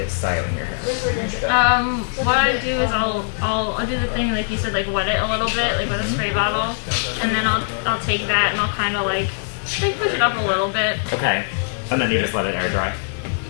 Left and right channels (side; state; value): right; silent; digital silence